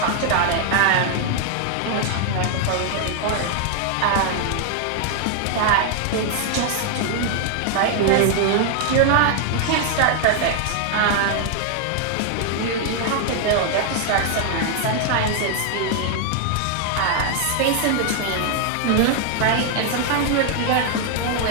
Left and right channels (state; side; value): different; both; correlation 0.00